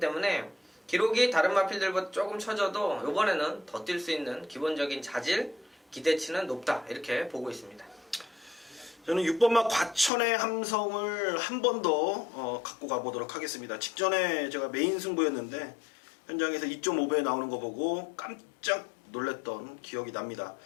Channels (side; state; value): right; drops out; at 10.1 s